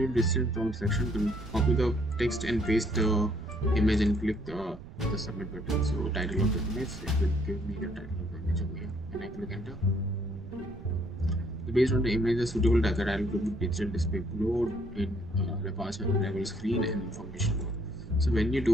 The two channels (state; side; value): noise; right; rumble, 15 dB below the sound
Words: distance prompt section, can copy the text and paste the image and click the submit button. So title of the image, it will give me the title of the image over here, and I click enter. So based on the image, the suitable target, I will put digital display load in departure arrival screen and information load. So when you